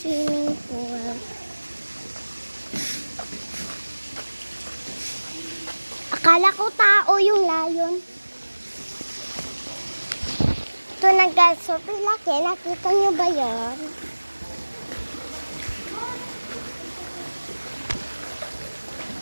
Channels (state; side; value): inverted; both; correlation -1.00